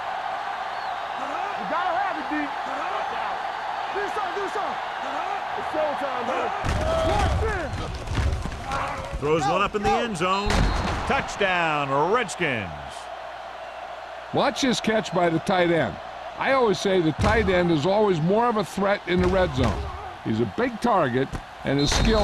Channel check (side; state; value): both; identical; correlation 1.00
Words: You gotta have it, D. Do something. It's showtime, man. Throws one up in the end zone. Touchdown, Redskins. Watch this catch by the tight end. I always say the tight end is always more of a threat in the red zone. He's a big target, and his